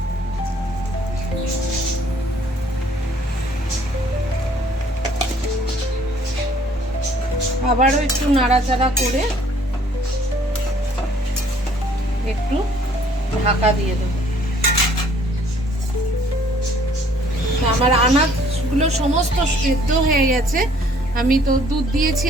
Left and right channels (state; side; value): normal; both; correlation 0.59